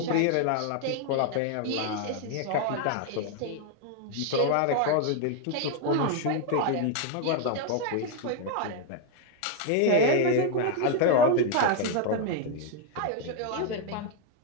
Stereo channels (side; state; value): both; different; correlation 0.01